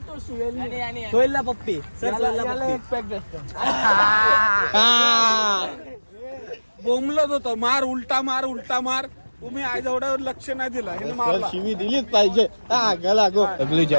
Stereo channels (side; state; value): both; inverted; correlation -1.00